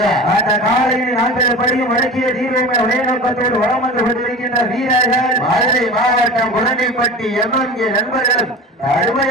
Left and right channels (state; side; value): normal; both; correlation 0.33